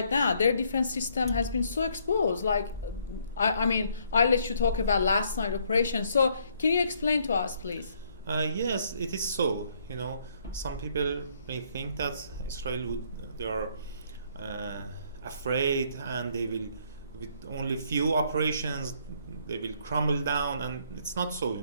now. Their defense system has been so exposed. Like, I mean, I'll let you talk about last night operation. So can you explain to us, please? Yes, it is so. You know, some people may think that they are afraid, and they will, with only few operations, they will crumble down, and it's not so. You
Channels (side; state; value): both; inverted; correlation -0.67